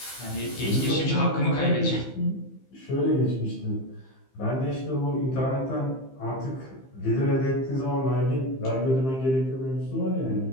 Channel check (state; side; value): late; right; 15 ms